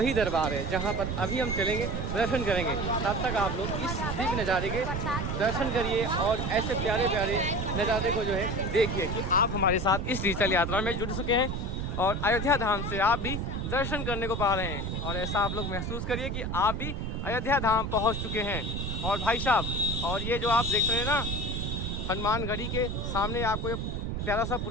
दरबार है जहाँ पर अभी हम चलेंगे, दर्शन करेंगे। तब तक आप लोग इस दिव्य नज़ारे के दर्शन करिए और ऐसे प्यारे प्यारे नज़ारे को जो है देखिए कि आप हमारे साथ इस डिजिटल यात्रा में जुड़ चुके हैं और अयोध्या धाम से आप भी दर्शन करने को पा रहे हैं। और ऐसा आप लोग महसूस करिए कि आप भी अयोध्या धाम पहुँच चुके हैं। और भाई साहब, और ये जो आप देख रहे हैं ना, हनुमानगढ़ी के सामने आपको ये प्यारा सा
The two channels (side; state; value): right; noise; rumble, 2 dB below the sound